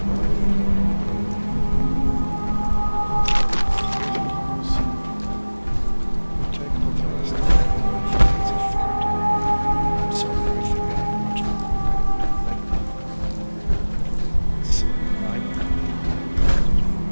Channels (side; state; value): both; inverted; correlation -1.00